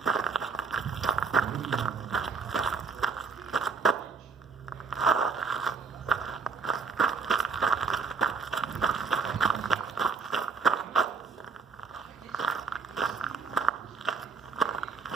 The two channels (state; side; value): quieter; left; 5.0 dB